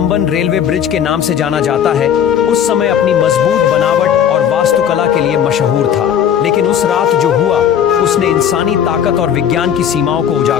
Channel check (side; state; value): right; quieter; 8.9 dB